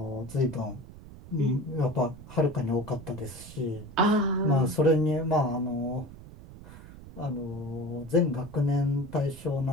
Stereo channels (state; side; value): noise; right; rumble, 17 dB below the sound